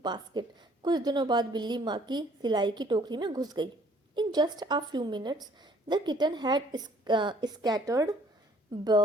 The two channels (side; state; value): both; normal; correlation 0.59